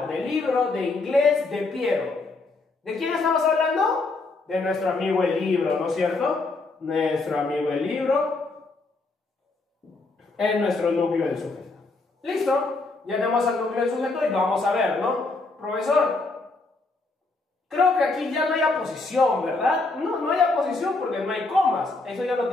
Del libro de inglés de Piero. ¿De quién estamos hablando? De nuestro amigo el libro, ¿no es cierto? Nuestro amigo el libro es nuestro núcleo del sujeto. ¿Listo? Ya tenemos al núcleo del sujeto y vamos a ver, ¿no? Profesor, creo que aquí ya no hay aposición, ¿verdad? No, no hay aposición porque no hay comas. Eso ya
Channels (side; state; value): right; quieter; 3.5 dB